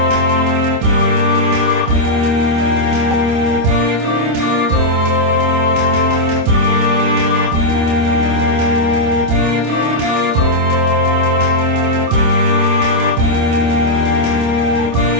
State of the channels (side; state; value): left; late; 26 ms